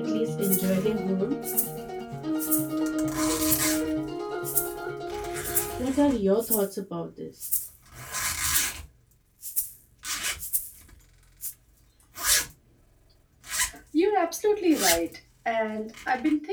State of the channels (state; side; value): identical; both; correlation 1.00